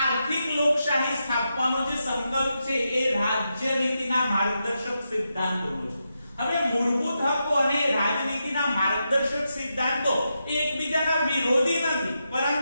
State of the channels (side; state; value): both; inverted; correlation -0.86